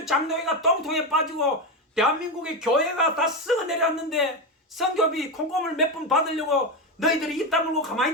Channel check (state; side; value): normal; both; correlation 0.13